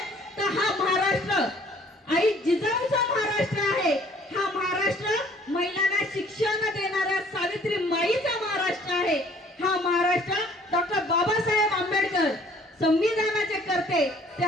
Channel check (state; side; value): normal; both; correlation 0.56